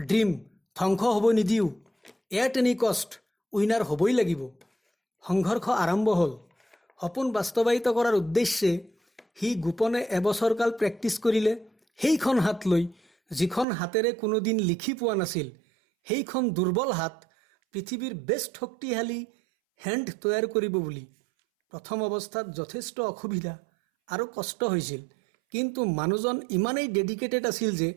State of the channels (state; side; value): drops out; left; at 13.7 s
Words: ড্ৰিম ধ্বংস হ'ব নিদিওঁ, এট এনি কষ্ট উইনাৰ হ'বই লাগিব। সংঘৰ্ষ আৰম্ভ হ'ল। সপোন বাস্তৱায়িত কৰাৰ উদ্দেশ্যে সি গোপনে এবছৰকাল প্ৰেক্টিছ কৰিলে। সেইখন হাত লৈ যিখন হাতেৰে কোনোদিন লিখি পোৱা নাছিল, সেইখন দুৰ্বল হাত পৃথিৱীৰ বেষ্ট শক্তিশালী হেণ্ড তৈয়াৰ কৰিব বুলি। প্ৰথম অৱস্থাত যথেষ্ট অসুবিধা আৰু কষ্ট হৈছিল, কিন্তু মানুহজন ইমানেই ডেডিকেটেড আছিল যে